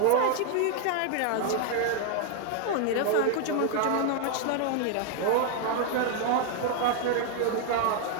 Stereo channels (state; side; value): different; both; correlation 0.00